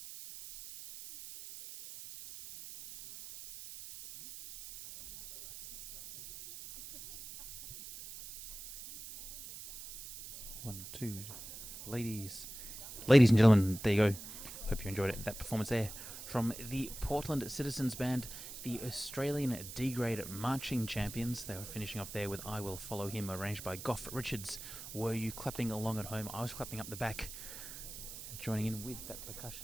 One, two. Ladies and gentlemen, there you go. Hope you enjoyed it. That performance there from the Portland Citizens Band, the Australian D-grade marching champions. They were finishing off there with I Will Follow Him, arranged by Gough Richards. Were you clapping along at home? I was clapping up the back, joining in with that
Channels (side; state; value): right; noise; hiss, 11 dB below the sound